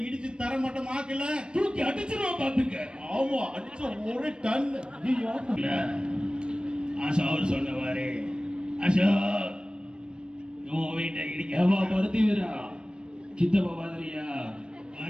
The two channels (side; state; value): left; late; 0.053 ms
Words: இடிச்சு தரமாட்டமாக்கல தூக்கி அடிச்சிருவோம் பாத்துக்க. ஆமா, அடிச்ச ஒரு டன். அசோக் சொன்னவாரு அசோக் உன் வீட்டை இடிக்கவா பருத்திவிரா சித்தப்பா மாதிரியா